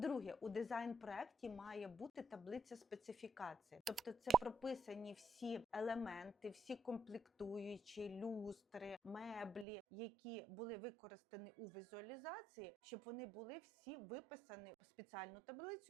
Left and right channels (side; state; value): left; drops out; at 9.7 s